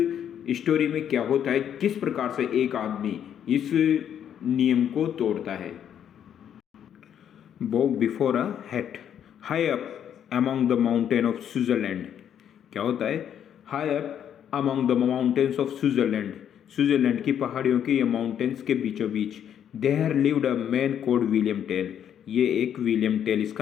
स्टोरी में क्या होता है, किस प्रकार से एक आदमी इस नियम को तोड़ता है। Bow before a hat. High up among the mountain of Switzerland. क्या होता है, high up among the mountains of Switzerland. Switzerland की पहाड़ियों के ये माउंटेन्स के बीचों बीच there lived a man called William Tell. ये एक विलियम टेल,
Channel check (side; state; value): right; quieter; 9.3 dB